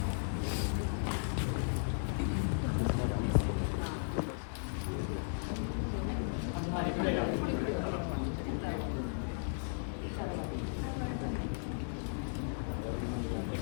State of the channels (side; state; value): right; silent; 54 dB below the other